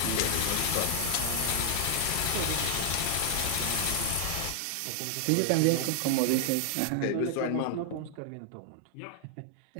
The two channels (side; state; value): both; different; correlation 0.00